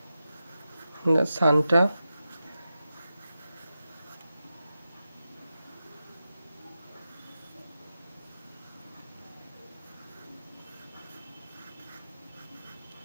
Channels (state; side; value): inverted; both; correlation -0.91